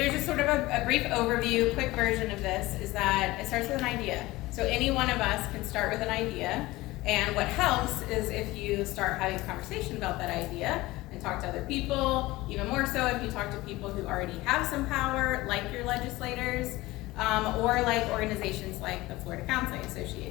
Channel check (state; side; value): quieter; right; 19.3 dB